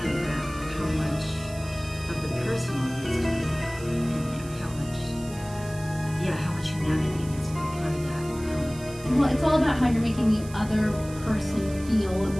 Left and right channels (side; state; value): right; noise; hiss, 18 dB below the sound